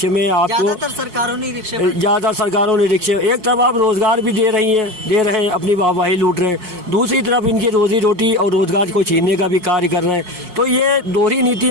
में आपको ज्यादातर सरकारों ने रिक्शे, एक तरफ आप रोजगार भी दे रहे हैं, अपनी वाहवाही लूट रहे हैं, दूसरी तरफ इनकी रोजी रोटी और रोजगार को छीनने का भी कार्य कर रहे हैं। तो ये दोहरी नीति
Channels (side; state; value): left; late; 5.6 ms